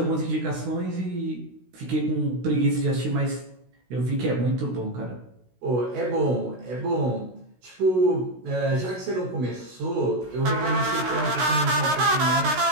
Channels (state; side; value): late; left; 16 ms